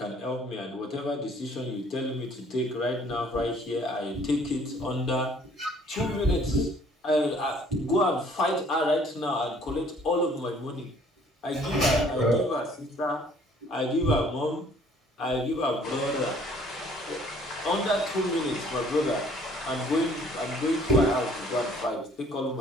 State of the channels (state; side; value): normal; both; correlation 0.58